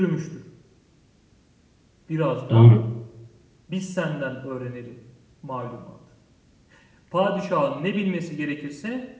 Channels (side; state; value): both; identical; correlation 1.00